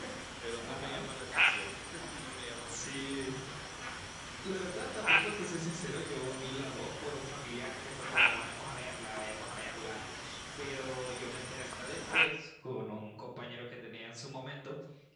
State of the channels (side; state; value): both; identical; correlation 1.00